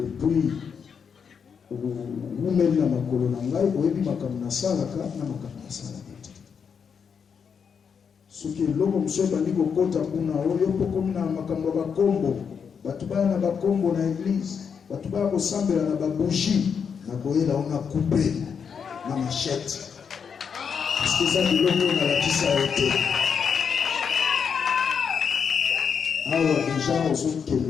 ou mène na makolo na ngai, au yebi makamna salaka na makamna salaka. soki eloko mosusu ebandi kokota kuna oyo mpo komi na makambo ya bakombo bato baya na bakombo na eglise bato baya kosambela na babougie na koyela o na coupe na machete parceke eza biloko nalakisa yo te awa deja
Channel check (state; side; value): quieter; right; 6.7 dB